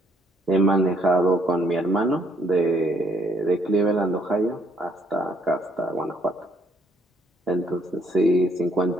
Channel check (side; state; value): both; normal; correlation 0.68